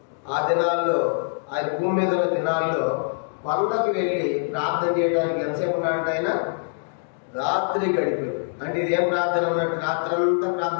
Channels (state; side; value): silent; right; digital silence